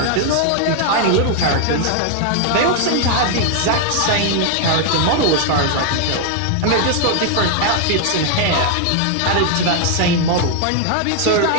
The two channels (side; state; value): both; different; correlation 0.00